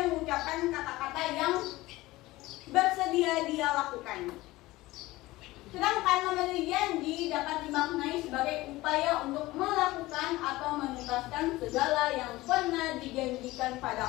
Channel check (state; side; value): quieter; right; 18.8 dB